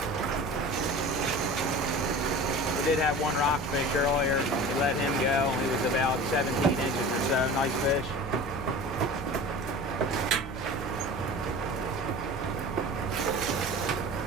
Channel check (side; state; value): both; normal; correlation 0.37